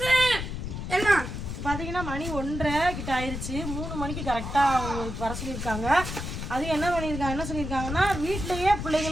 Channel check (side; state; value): left; noise; rumble, 6 dB below the sound